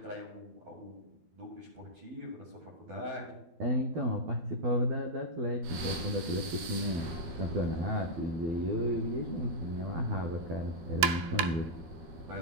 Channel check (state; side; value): late; left; 13 ms